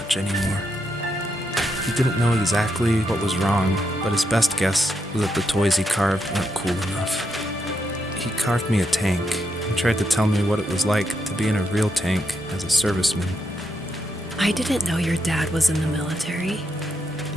anymore. He didn't know exactly what was wrong, but his best guess was that the toys he carved weren't cool enough. He carved me a tank and tried to tell me what it was like to be in a real tank as a serviceman. I didn't know your dad was in the military.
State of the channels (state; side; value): normal; both; correlation 0.81